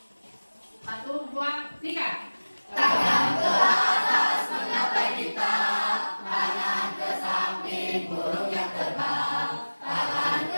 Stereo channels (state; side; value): inverted; both; correlation -1.00